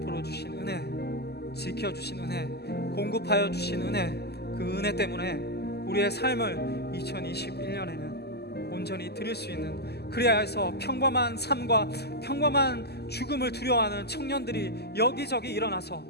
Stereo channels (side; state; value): right; late; 0.47 ms